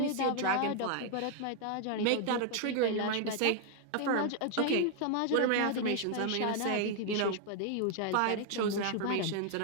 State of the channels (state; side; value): different; both; correlation 0.00